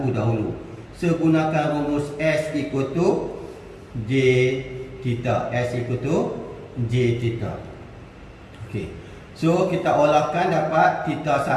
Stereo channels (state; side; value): identical; both; correlation 1.00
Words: dahulu. So gunakan rumus S equal to J theta. S equal to J theta. Okey. So kita olahkan dapat theta